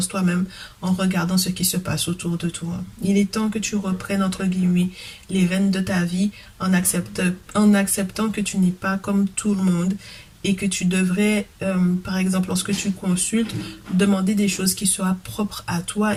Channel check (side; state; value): both; identical; correlation 1.00